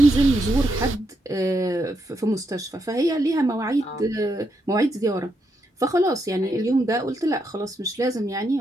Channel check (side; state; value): both; normal; correlation 0.81